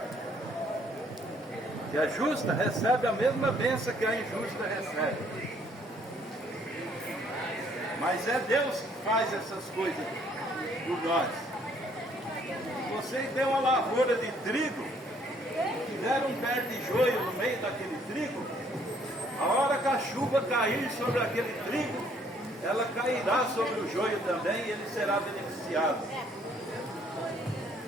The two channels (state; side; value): normal; both; correlation 0.64